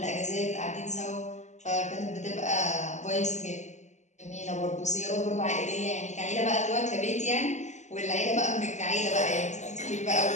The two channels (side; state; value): right; late; 0.34 ms